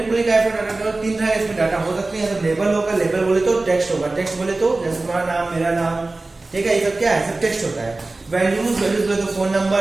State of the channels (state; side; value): quieter; left; 3.2 dB